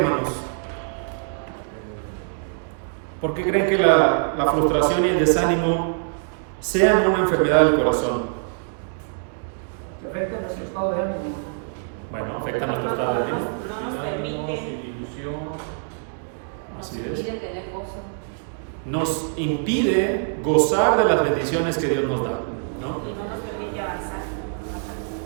¿Por qué creen que la frustración y el desánimo sean una enfermedad del corazón? Afecta nuestro estado de ánimo. Bueno, afecta nuestro estado de ánimo. No nos permite. Sin ilusión. Así Nos es. impide tener gozo. Nos impide gozar de las bendiciones que Dios nos da, ¿no? Y no nos permite avanzar.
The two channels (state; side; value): silent; left; digital silence